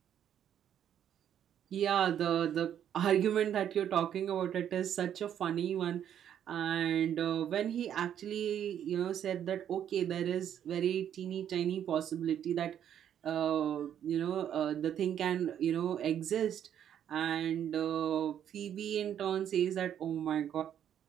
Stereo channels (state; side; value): quieter; left; 9.7 dB